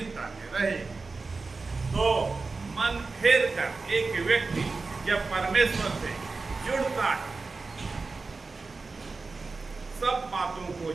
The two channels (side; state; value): left; quieter; 4.0 dB